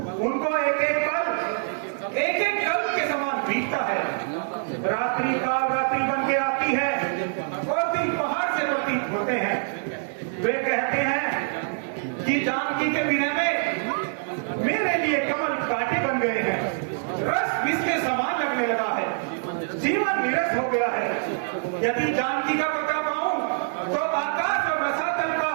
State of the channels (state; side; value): silent; left; digital silence